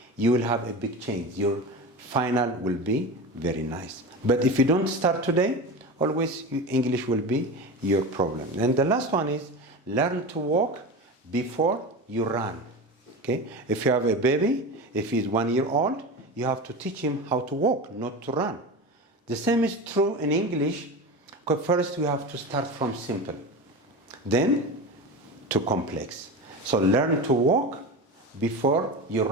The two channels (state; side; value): normal; both; correlation 0.27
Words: you will have a big change. Your final will be very nice. But if you don't start today, always English will be your problem. And the last one is learn to walk before you run. Okay? If you have a baby, if he's 1 year old, you have to teach him how to walk, not to run. The same is true in English. First, you have to start from simple, then to complex. So learn to walk before you